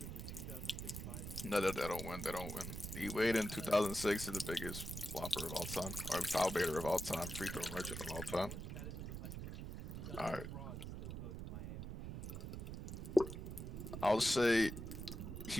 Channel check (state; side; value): noise; right; rumble, 7 dB below the sound